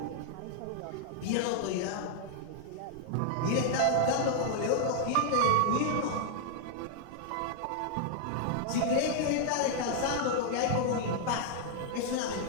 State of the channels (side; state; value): both; different; correlation 0.00